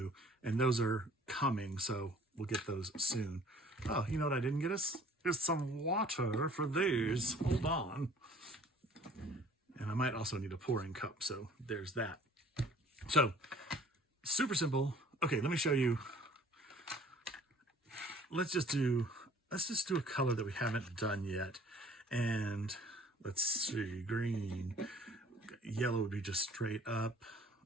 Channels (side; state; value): both; normal; correlation 0.53